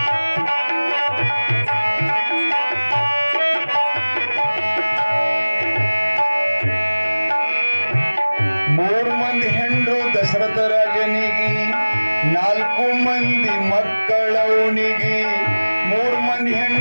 ಮೂರು ಮಂದಿ ಹೆಂಡ್ರು ದಶರಥ ರಾಜನಿಗೆ 4 ಮಂದಿ ಮಕ್ಕಳವನಿಗೆ ಮೂರು ಮಂದಿ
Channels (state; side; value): inverted; both; correlation -1.00